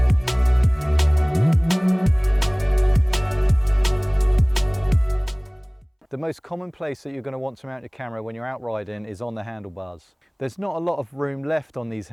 The most common place that you're going to want to mount your camera when you're out riding is on the handlebars. There's not a lot of room left on these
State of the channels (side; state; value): both; identical; correlation 1.00